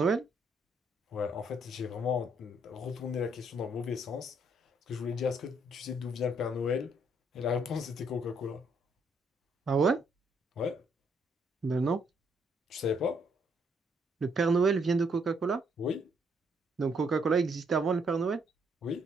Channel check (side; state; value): both; normal; correlation 0.70